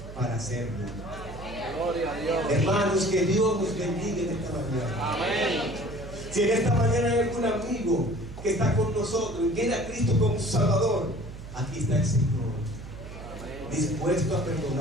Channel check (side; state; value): right; noise; hum, 12 dB below the sound